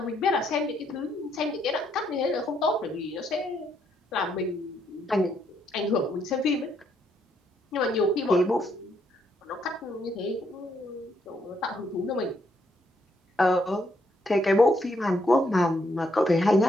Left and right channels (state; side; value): normal; both; correlation 0.74